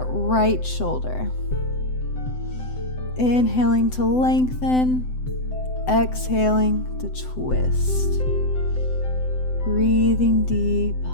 right shoulder. Inhaling to lengthen, exhaling to twist. Breathing deep.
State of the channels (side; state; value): right; late; 7.9 ms